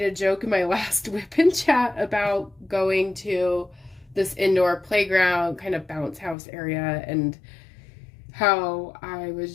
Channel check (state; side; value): drops out; right; at 6.4 s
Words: a joke in my last WIP and Chat about going to this indoor playground, kind of bounce house area, and how I